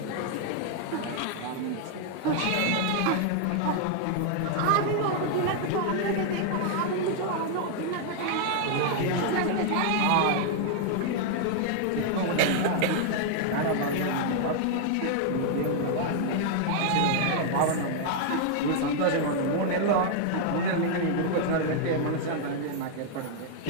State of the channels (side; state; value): both; different; correlation 0.00